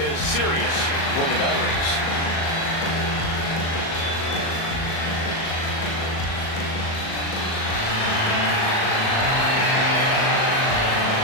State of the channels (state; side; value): late; right; 37 ms